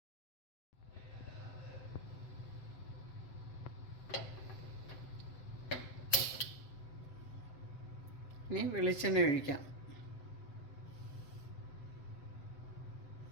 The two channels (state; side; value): late; right; 7.8 ms